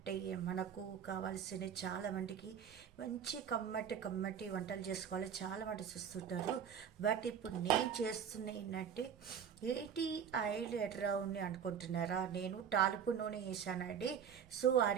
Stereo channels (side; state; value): left; quieter; 7.9 dB